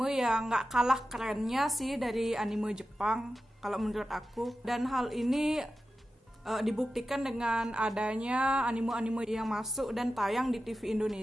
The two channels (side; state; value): both; normal; correlation 0.92